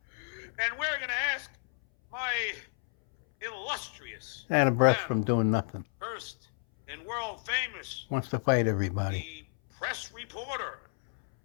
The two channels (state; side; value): silent; right; 57 dB below the other